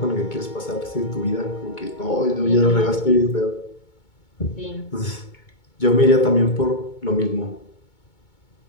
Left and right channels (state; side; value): late; right; 2.2 ms